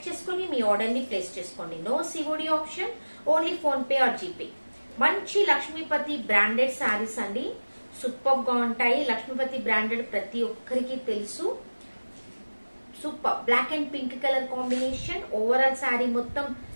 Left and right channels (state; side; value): inverted; both; correlation -1.00